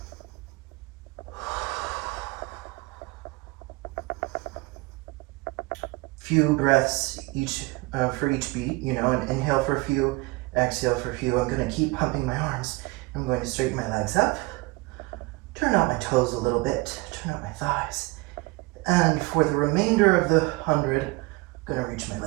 Few breaths each for each beat, and inhale for a few, exhale for a few. I'm going to keep pumping my arms. I'm going to straighten my legs up, turn out my toes a little bit, turn out my thighs. And for the remainder of the 100, I'm going to reach my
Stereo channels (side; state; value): left; quieter; 23.9 dB